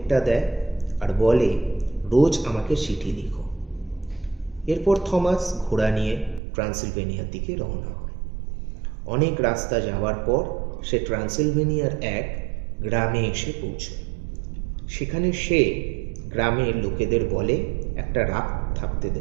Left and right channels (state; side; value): drops out; left; at 6.4 s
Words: দেয় আর বলে, রোজ আমাকে চিঠি লিখো। এরপর থমাস ঘোড়া নিয়ে ট্রান্সিলভেনিয়ার দিকে রওনা হয়। অনেক রাস্তা যাওয়ার পর সে ট্রান্সিলভেনিয়ার এক গ্রামে এসে পৌঁছয়। সেখানে সে গ্রামের লোকেদের বলে একটা রাত থাকতে